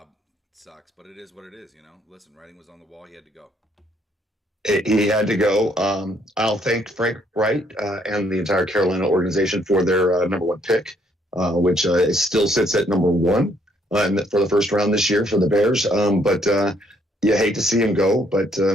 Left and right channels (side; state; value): both; normal; correlation 0.68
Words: It sucks, but it is what it is. Listen, writing was on the wall. He had to go. He had to go. I'll thank Frank Wright and the entire Carolina organization for their number one pick, which still sits at number one for the first round this year for the Bears. But you hate to see him go, but